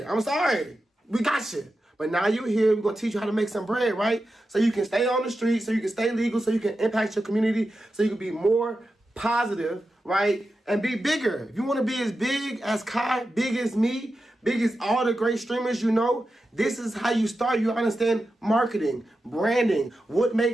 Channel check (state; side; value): normal; both; correlation 0.91